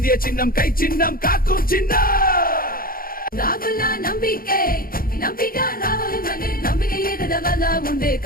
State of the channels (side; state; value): right; late; 0.42 ms